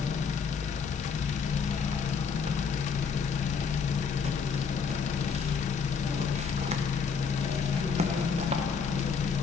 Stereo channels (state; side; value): quieter; right; 5.8 dB